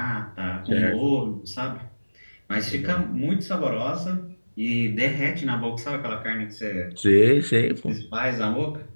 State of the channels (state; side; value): inverted; both; correlation -1.00